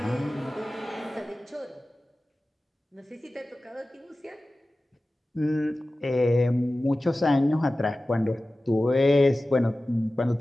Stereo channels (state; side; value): normal; both; correlation 0.96